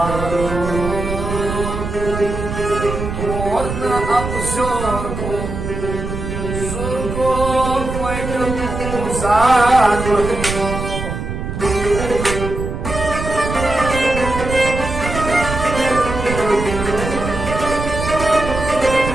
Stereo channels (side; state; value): right; noise; rumble, 5 dB below the sound